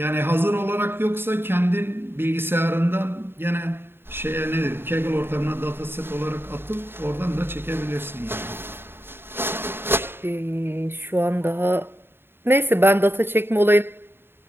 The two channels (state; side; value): late; left; 0.11 ms